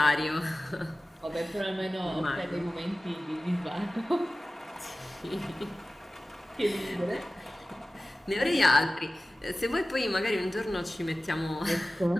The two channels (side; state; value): both; normal; correlation 0.96